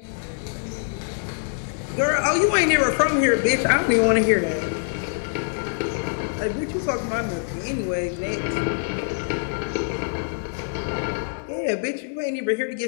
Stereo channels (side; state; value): right; silent; digital silence